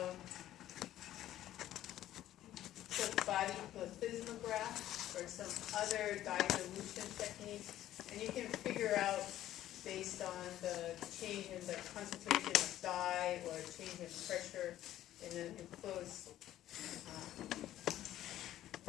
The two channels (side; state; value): right; quieter; 13.1 dB